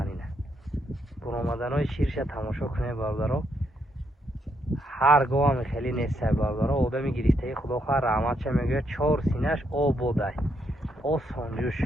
ина буромаданои ширша тамошо кунед бародаро. ҳар гоҳам хеле нестай бародаро. одами гирифтаи худо хоҳад раҳматша мегӯяд 4 синаш ободай осонҷӯш.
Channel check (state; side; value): normal; both; correlation 0.76